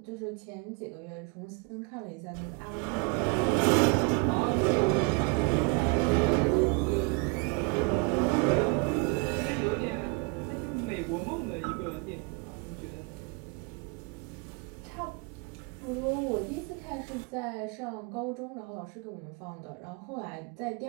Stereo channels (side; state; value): left; quieter; 31.0 dB